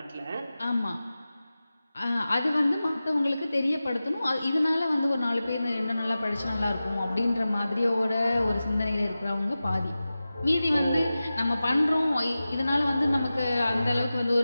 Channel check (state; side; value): inverted; both; correlation -0.95